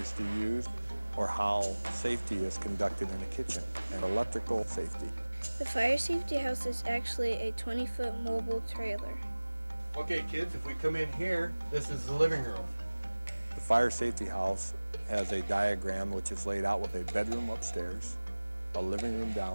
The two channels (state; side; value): inverted; both; correlation -1.00